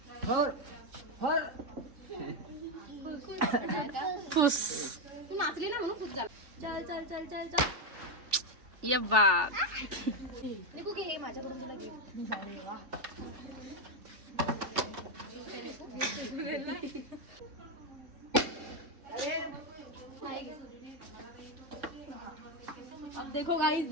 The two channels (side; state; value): left; late; 3.5 ms